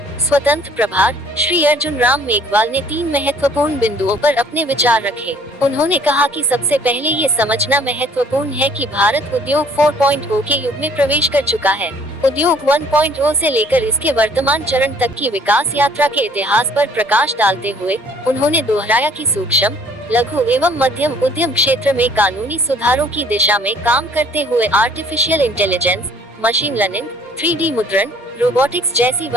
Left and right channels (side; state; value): both; normal; correlation 0.57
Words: स्वतंत्र प्रभार श्री अर्जुन राम मेघवाल ने 3 महत्वपूर्ण बिंदुओं पर अपने विचार रखे। उन्होंने कहा कि सबसे पहले ये समझना महत्वपूर्ण है कि भारत उद्योग 4.0 के युग में प्रवेश कर चुका है। उद्योग 1.0 से लेकर इसके वर्तमान चरण तक की विकास यात्रा के इतिहास पर प्रकाश डालते हुए उन्होंने दोहराया कि सूक्ष्म, लघु एवं मध्यम उद्यम क्षेत्र में कानूनी सुधारों की दिशा में काम करते हुए artificial intelligence, machine learning, 3D मुद्रण, रोबोटिक्स जैसी